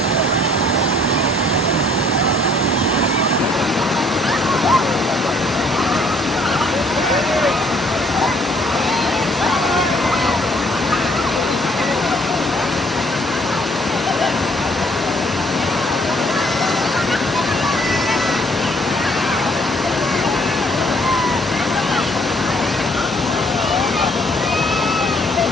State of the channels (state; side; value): normal; both; correlation 0.62